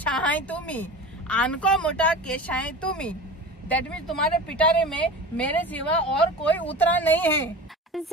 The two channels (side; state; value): both; normal; correlation 0.33